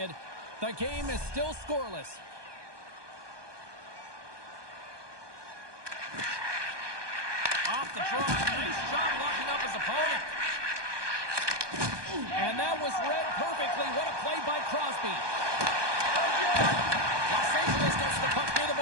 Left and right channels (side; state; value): left; late; 1.2 ms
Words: The game is still scoreless. Off the draw. Nice job locking up his opponent. And that was read perfectly. What a play by Crosby. Los Angeles gets the puck near the